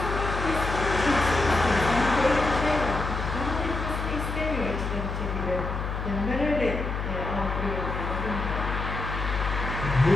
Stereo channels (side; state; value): left; noise; hum, 4 dB below the sound